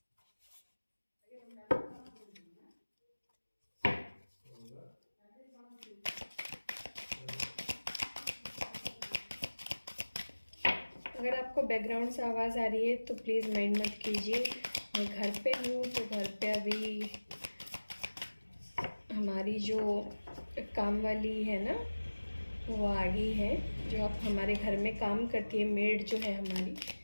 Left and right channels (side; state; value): both; inverted; correlation -1.00